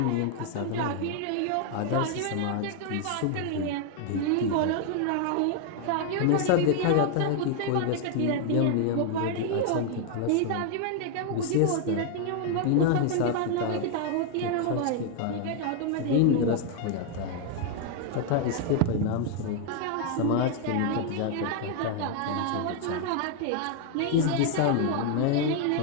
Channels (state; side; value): different; both; correlation 0.00